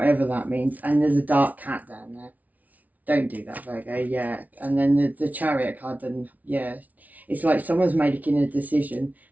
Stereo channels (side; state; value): left; late; 0.074 ms